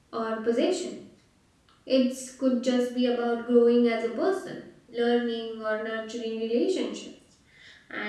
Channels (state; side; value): identical; both; correlation 1.00